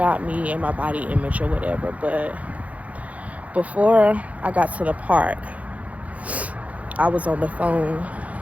me and my body image or whatever, but before I got to the park, I was on the phone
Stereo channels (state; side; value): late; left; 0.068 ms